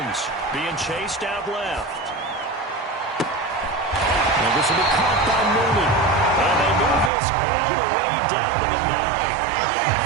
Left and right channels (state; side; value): drops out; left; at 7.1 s